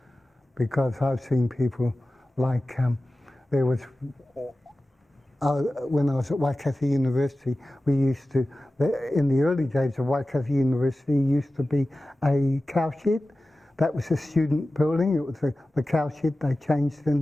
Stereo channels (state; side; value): normal; both; correlation 0.95